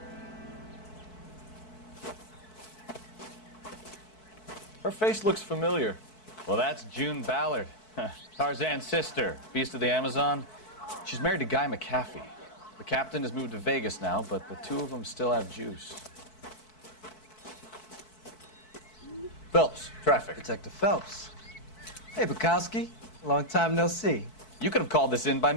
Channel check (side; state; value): right; late; 4.6 ms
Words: Her face looks familiar. Well, that's June Ballard, Tarzan's sister, Beast of the Amazon. She's married to Guy McCaffey. The captain has moved to Vegas now, but the two of them still have juice. Phelps, traffic. Detective Phelps. Hey, Bukowski. Long time no see. You could have called this in by